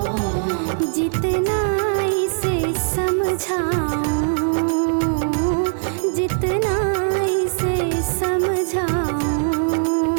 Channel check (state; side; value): silent; left; digital silence